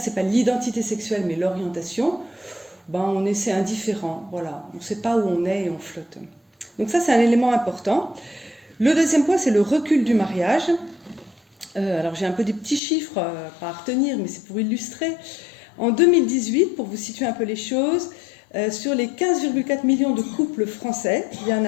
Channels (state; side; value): drops out; right; at 12.8 s